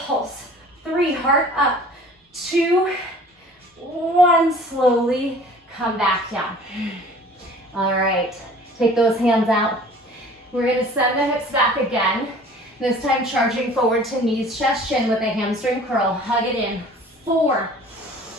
3, heart up. 2, 1, slowly come back down. All right. Take those hands out. We're going to send the hips back again. This time charging forward to knees, chest, chin with a hamstring curl. Hug it in. 4.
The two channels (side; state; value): both; normal; correlation 0.48